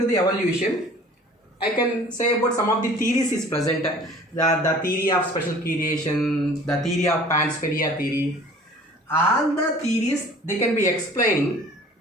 the evolution, I can say about some of the theories is present. The theory of special creation, the theory of panspermia theory, all the theories they can be explaining,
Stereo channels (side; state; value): both; normal; correlation 0.48